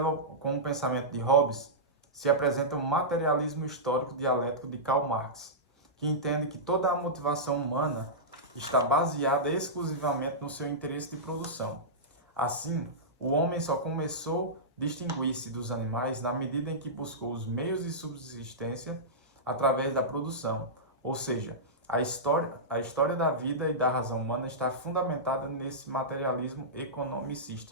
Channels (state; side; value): normal; both; correlation -0.15